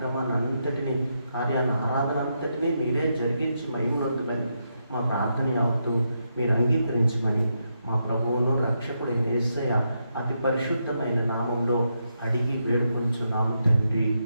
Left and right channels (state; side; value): inverted; both; correlation -0.82